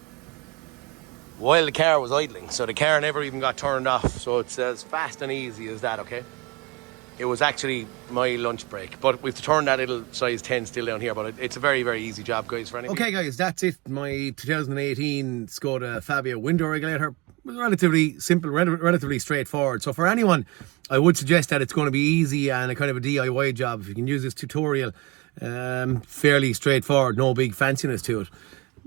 while the car was idling. So the car never even got turned off. So it's as fast and easy as that, okay? It was actually my lunch break, but we've turned that little size 10 still down here, but it's a very, very easy job, guys, for anything. Okay, guys, that's it. My 2018 Skoda Fabia window regulator was relatively simple, relatively straightforward. So for anyone, I would suggest that it's going to be easy and a kind of a DIY job. If you can use this tutorial, fairly straightforward, no big fanciness to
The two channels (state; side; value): quieter; left; 23.8 dB